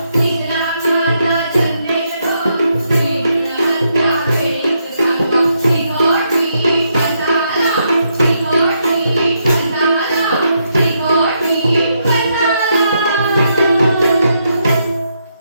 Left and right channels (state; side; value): inverted; both; correlation -0.78